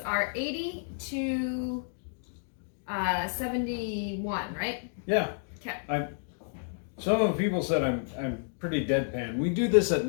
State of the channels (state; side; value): silent; right; digital silence